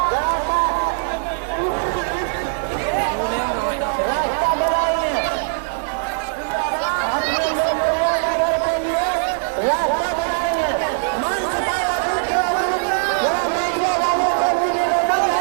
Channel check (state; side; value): silent; left; digital silence